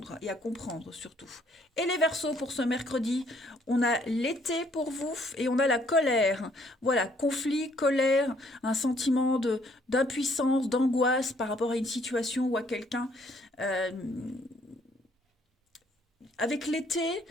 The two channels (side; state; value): both; normal; correlation 0.65